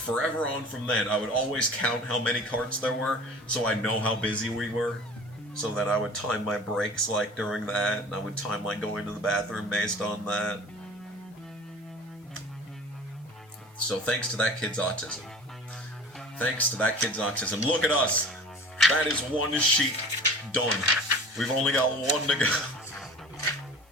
on from then, I would always count how many carts there were, so I know how busy we were, so that I would time my breaks, like, during that, and I would time, like, going to the bathroom based on that. So thanks to that kid's autism. Look at us! That is one sheet done. We've only got one to go.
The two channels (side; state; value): both; normal; correlation 0.42